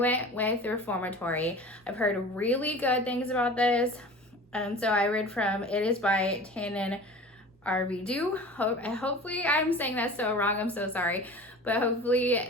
with Reformatory. I've heard really good things about this. So I read from, it is by Tannen Arvidu. Hopefully I'm saying that so wrong, I'm so sorry. But hopefully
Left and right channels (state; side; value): normal; both; correlation 0.38